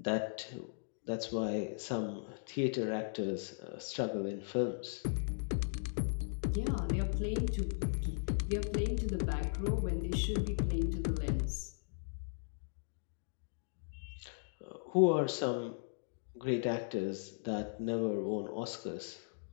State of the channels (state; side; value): silent; right; digital silence